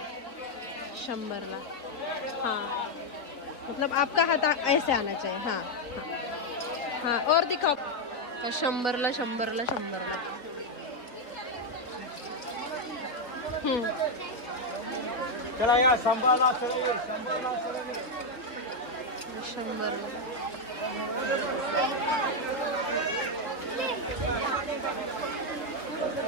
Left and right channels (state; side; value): late; right; 3.9 ms